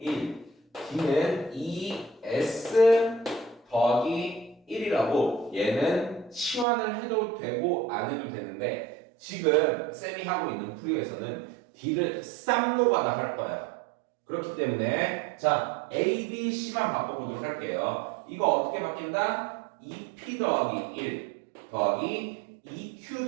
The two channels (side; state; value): left; drops out; at 6.7 s